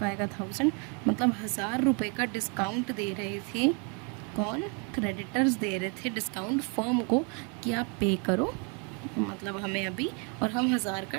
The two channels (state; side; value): quieter; left; 35.7 dB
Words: आएगा 1000, मतलब 1000 रुपये का डिस्काउंट दे रही थी कौन, क्रेडिटर्स दे रहे थे डिस्काउंट फर्म को कि आप पे करो मतलब हमें अभी, और हम 1000 का